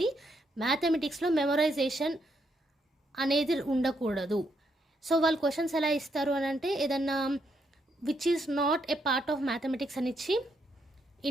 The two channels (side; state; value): both; normal; correlation 0.77